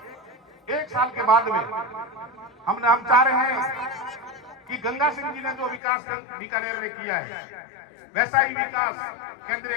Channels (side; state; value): right; drops out; at 5.8 s